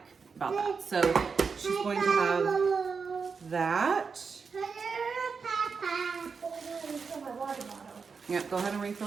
about that. So she's going to have that. Yep, go ahead and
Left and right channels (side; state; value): left; quieter; 5.3 dB